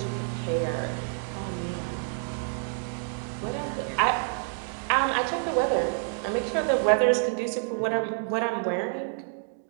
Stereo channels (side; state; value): left; silent; 56 dB below the other